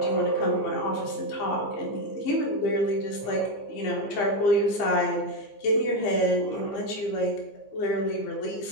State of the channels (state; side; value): late; right; 15 ms